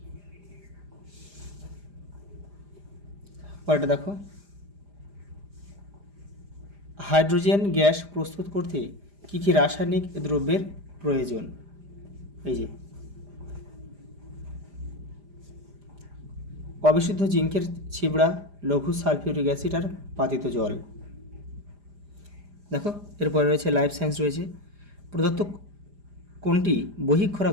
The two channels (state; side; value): late; left; 5.0 ms